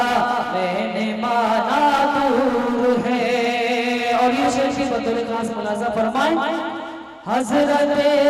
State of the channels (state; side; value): identical; both; correlation 1.00